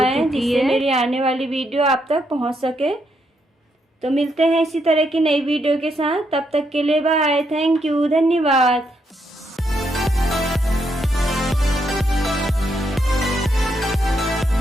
जिससे मेरी आने वाली वीडियो आप तक पहुंच सके। तो मिलते हैं इसी तरह की नई वीडियो के साथ, तब तक के लिए बाय, थैंक यू, धन्यवाद।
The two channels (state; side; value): normal; both; correlation 0.78